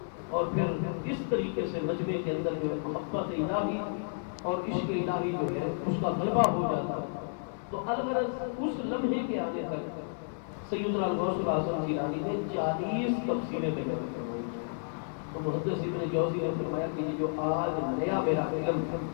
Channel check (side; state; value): right; silent; digital silence